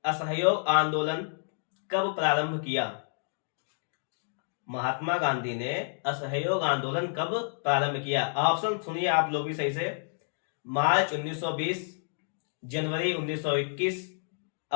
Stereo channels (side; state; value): right; silent; digital silence